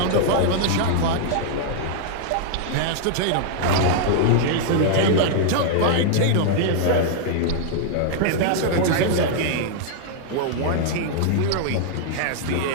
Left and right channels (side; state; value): both; different; correlation -0.01